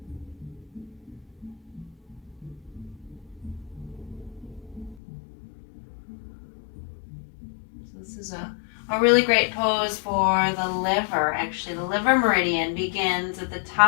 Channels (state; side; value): drops out; right; at 5.0 s